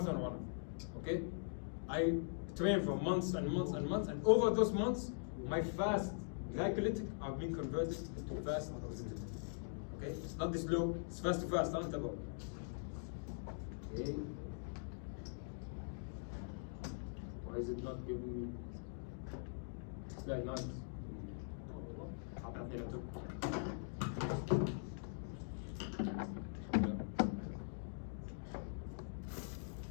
runner. Okay? I train for months and months and months, and over those months my fast glycolytic are being converted into fast oxidative. Okay? It's not this slow, it's fast to fast, aren't about. Okay. Why is it not giving me slide 9?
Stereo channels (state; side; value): silent; right; digital silence